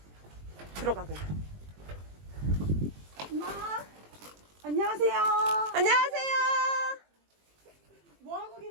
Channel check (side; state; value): left; late; 20 ms